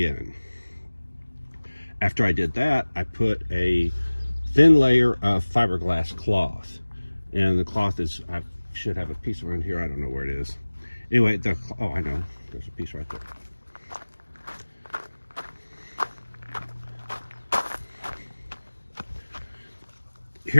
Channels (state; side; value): inverted; both; correlation -1.00